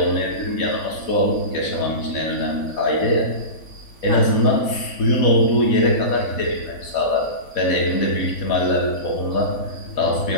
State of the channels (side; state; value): right; late; 3.5 ms